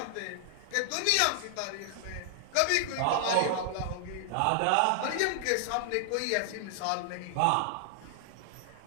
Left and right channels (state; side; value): different; both; correlation 0.00